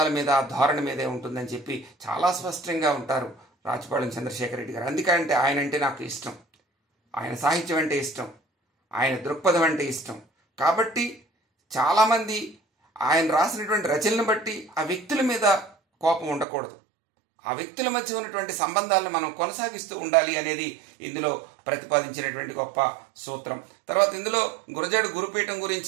మీద ధోరణి మీదే ఉంటుందని చెప్పి చాలా స్పష్టంగా ఉంటారు రాచపాళెం చంద్రశేఖర్ రెడ్డి గారు. అందుకంటే ఆయన అంటే నాకు ఇష్టం, ఆయన సాహిత్యం అంటే ఇష్టం, ఆయన దృక్పథం అంటే ఇష్టం. కాబట్టి చాలామంది ఆయన రాసినటువంటి రచనలను బట్టి ఆ వ్యక్తుల మీద కోపం ఉండకూడదు, ఆ వ్యక్తుల మధ్య ఉన్నటువంటి సంబంధాలను మనం కొనసాగిస్తూ ఉండాలి అనేది ఇందులో ప్రతిపాదించినటువంటి గొప్ప సూత్రం. తర్వాత ఇందులో గురజాడ గురుపీఠం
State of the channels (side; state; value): left; drops out; at 16.4 s